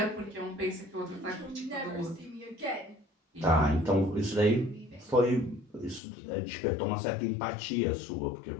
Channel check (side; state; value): right; drops out; at 6.0 s